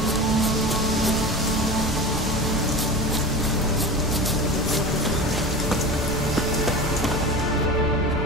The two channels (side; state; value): left; noise; hum, 11 dB below the sound